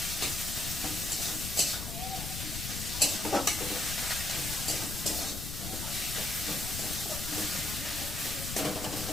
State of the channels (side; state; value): left; noise; rumble, 6 dB below the sound